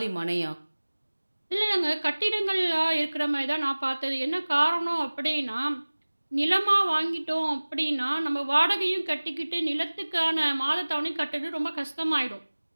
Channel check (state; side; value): inverted; both; correlation -1.00